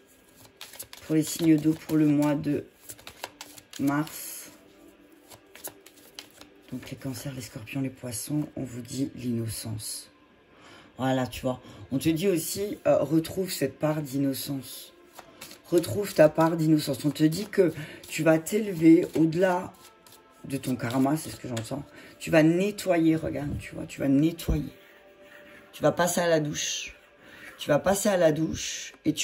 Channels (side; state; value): both; identical; correlation 1.00